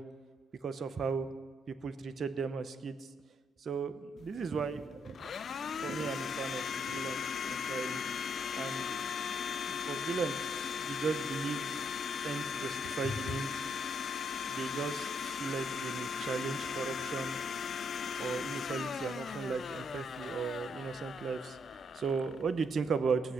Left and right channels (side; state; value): both; normal; correlation 0.74